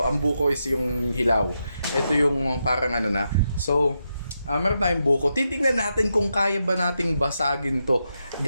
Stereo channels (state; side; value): inverted; both; correlation -0.85